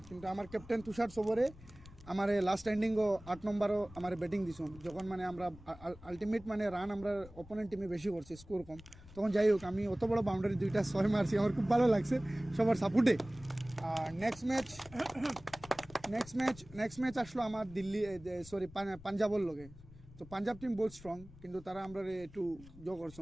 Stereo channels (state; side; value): noise; left; rumble, 19 dB below the sound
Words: কিন্তু আমার ক্যাপ্টেন তুষার সবরে আমার লাস্ট এন্ডিংও 8 নম্বরও আমার ব্যাটিং দিছুন, যখন মানে আমরা আলটিমেট মানে রান আমরা অপোনেন্ট টিমে বেশি করছি, স্কোর কম, তখন যাই হোক আমি অত বড় বাউন্ডারি 2টা 6 মারছি, আমার খুব ভালো লাগছে সবার সাপোর্টে। আর নেক্সট ম্যাচ আসলো আমার দিল্লি পাঞ্জাবর লগে। তো পাঞ্জাব টিম বহুত স্ট্রং, কিন্তু তারা আমরা একটু